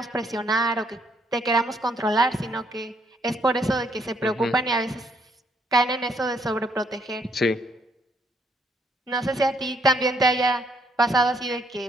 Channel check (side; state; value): both; normal; correlation 0.71